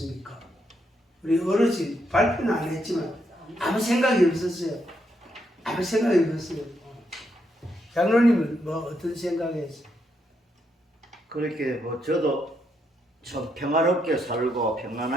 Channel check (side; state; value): both; normal; correlation 0.78